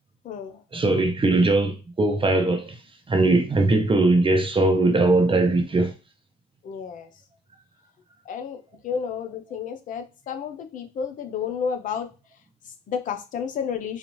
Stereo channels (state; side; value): normal; both; correlation 0.70